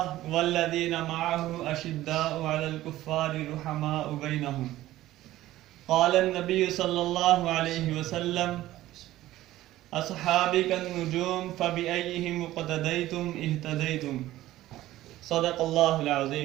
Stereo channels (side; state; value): left; quieter; 15.3 dB